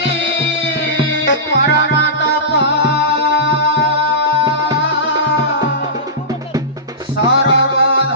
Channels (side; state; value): both; normal; correlation -0.18